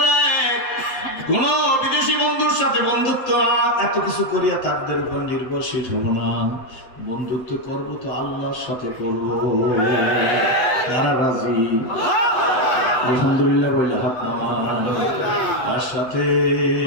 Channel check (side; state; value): right; late; 7.9 ms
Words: কোন বিদেশি বন্ধুর সাথে বন্ধুত্ব এত কিছু করিয়া তাদের উপর নির্ভরশীল হব না। বন্ধুত্ব করব তো আল্লাহর সাথে করব। তারা রাজি? আলহামদুলিল্লাহ বলে হাত নামান। তার সাথে,